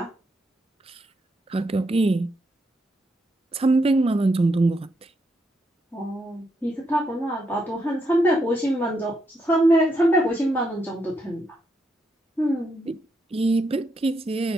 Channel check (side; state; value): both; normal; correlation 0.80